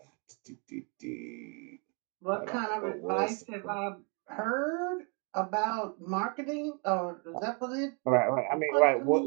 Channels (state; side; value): quieter; left; 36.0 dB